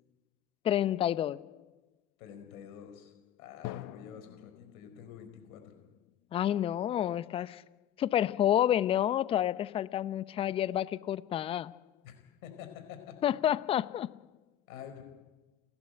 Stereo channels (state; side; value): quieter; right; 11.0 dB